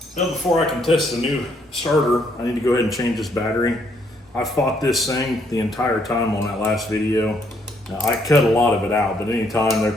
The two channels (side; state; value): both; normal; correlation 0.70